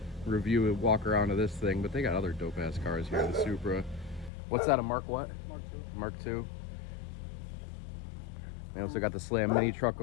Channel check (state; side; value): drops out; right; at 4.3 s